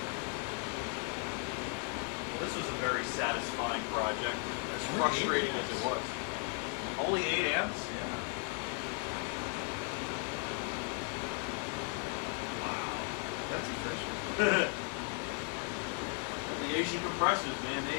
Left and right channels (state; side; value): quieter; right; 34.3 dB